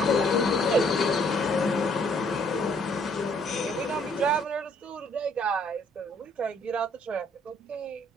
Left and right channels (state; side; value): normal; both; correlation 0.64